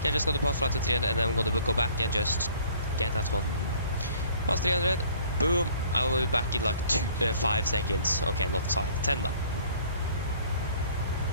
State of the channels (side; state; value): both; inverted; correlation -0.54